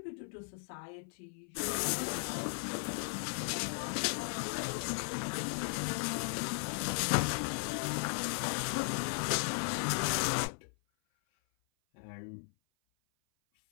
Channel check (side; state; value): right; silent; 53 dB below the other